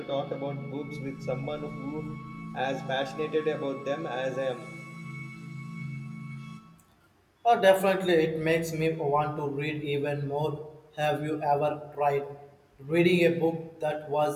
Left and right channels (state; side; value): identical; both; correlation 1.00